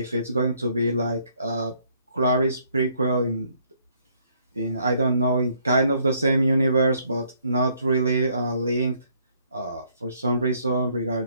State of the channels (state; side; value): inverted; both; correlation -0.67